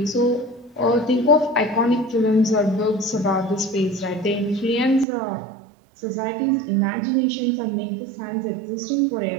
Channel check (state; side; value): drops out; left; at 5.1 s